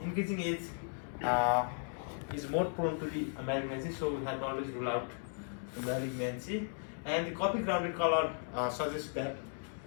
increasing age is more prone to the malignancy, so we have to always rule out the malignancy. And the coffee grounded color suggests that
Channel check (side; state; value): right; silent; digital silence